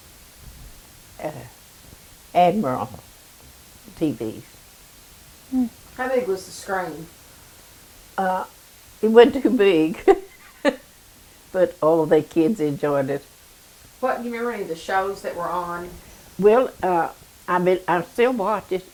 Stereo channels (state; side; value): identical; both; correlation 1.00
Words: TVs. How big was the screen? It wasn't too big, but all the kids enjoyed it. What, do you remember any of the shows that were on? Well, I still watch it